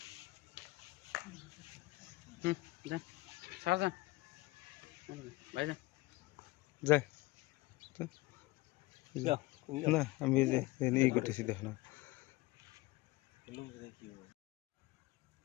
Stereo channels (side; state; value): right; quieter; 20.9 dB